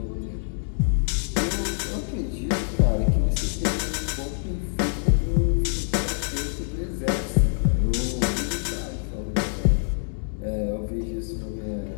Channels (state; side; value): silent; right; digital silence